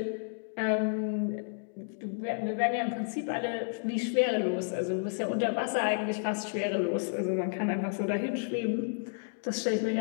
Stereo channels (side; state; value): right; silent; digital silence